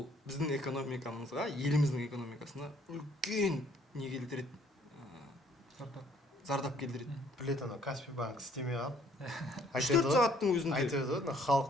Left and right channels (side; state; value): both; normal; correlation 0.62